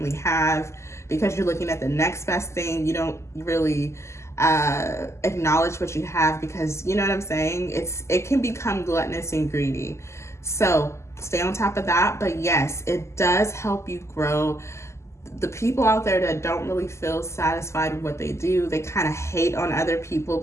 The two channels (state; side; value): late; right; 0.13 ms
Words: have because you're looking at the next best thing. You don't really acknowledge what you have, because you know what I'm saying? It can become gluttonous and greedy. So stay on top of that. But yes, it does help you grow. The people out there that don't really feel satisfied with what they do, they kind of hate on other people,